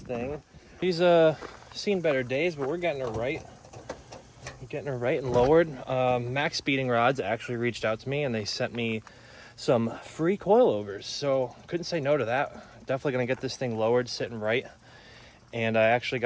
He's seen better days, but we're getting her right. Getting her right and lowered. Max Speeding Rods actually reached out to me and they sent me some free coilovers. So couldn't say no to that. Definitely gonna get this thing lowered, sitting right. And I actually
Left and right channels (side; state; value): both; identical; correlation 1.00